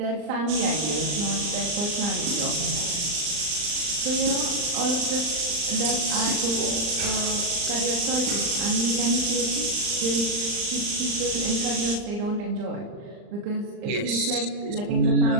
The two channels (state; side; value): late; left; 39 ms